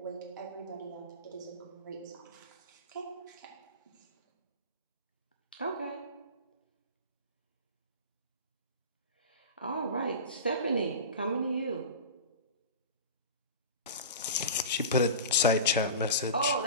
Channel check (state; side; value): inverted; both; correlation -0.31